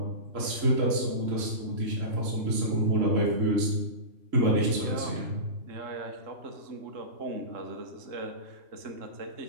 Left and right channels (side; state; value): left; late; 3.7 ms